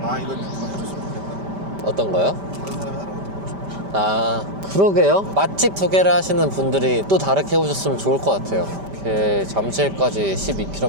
아 이건 누가 해줬으면 좋겠다. 어떤 거요? 다른 사람이 하는 것도 보고 싶어. 아 그러게요. 맛집 소개를 하시는 분들이 또 다르게 해보셨으면 좋을 것 같아요. 이렇게 잠실까지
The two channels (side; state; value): left; late; 5.1 ms